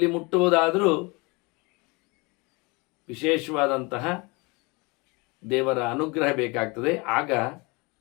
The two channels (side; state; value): right; quieter; 27.3 dB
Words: ಮುಟ್ಟುವುದಾದರೂ ವಿಶೇಷವಾದಂತಹ ದೇವರ ಅನುಗ್ರಹ ಬೇಕಾಗ್ತದೆ. ಆಗ